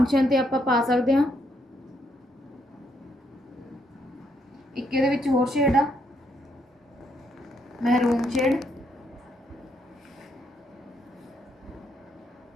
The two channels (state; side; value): normal; both; correlation 0.74